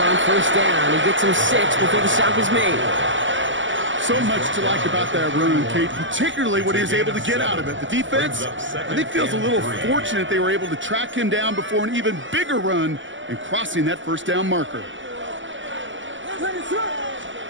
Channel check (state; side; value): late; left; 0.55 ms